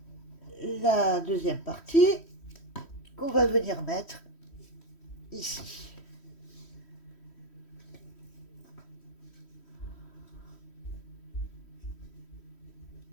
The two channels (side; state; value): right; late; 3.1 ms